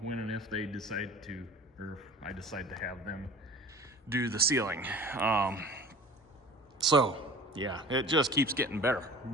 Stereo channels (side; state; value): both; normal; correlation 0.42